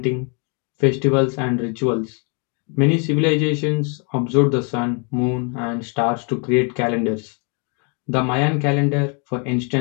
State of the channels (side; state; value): right; quieter; 36.8 dB